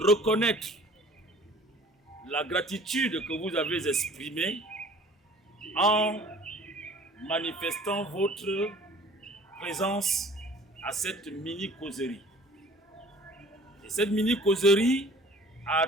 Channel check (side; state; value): both; normal; correlation 0.49